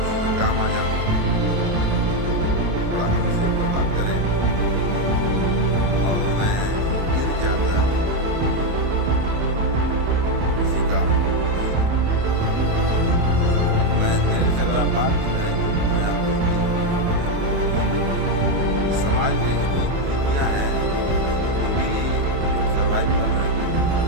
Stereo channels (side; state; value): left; late; 28 ms